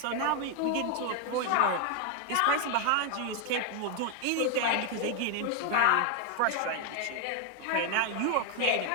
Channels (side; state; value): both; different; correlation 0.01